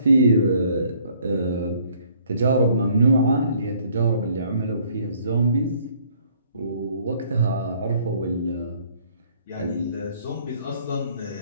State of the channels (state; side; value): inverted; both; correlation -0.61